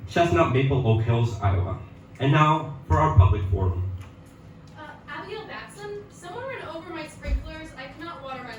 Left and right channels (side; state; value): both; identical; correlation 1.00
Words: Chestnut Maple Oak Hills, Iowa. And now for our public forum. Abigail Batson, someone ran over my sprinklers. I cannot water my